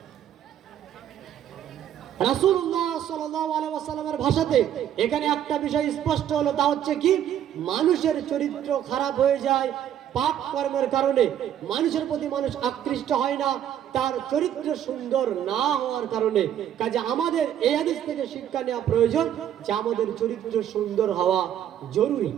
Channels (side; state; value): left; quieter; 10.4 dB